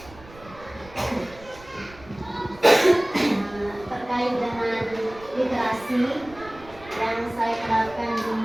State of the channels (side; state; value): right; noise; rumble, 21 dB below the sound